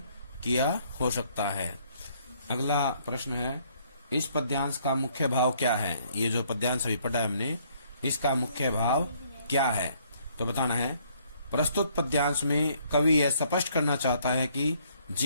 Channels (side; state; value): both; inverted; correlation -0.65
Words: किया हो सकता है। अगला प्रश्न है, इस पद्यांश का मुख्य भाव क्या है। ये जो पद्यांश अभी पढ़ा है हमने, इसका मुख्य भाव क्या है, तो बताना है प्रस्तुत पद्यांश में कवि यह स्पष्ट करना चाहता है कि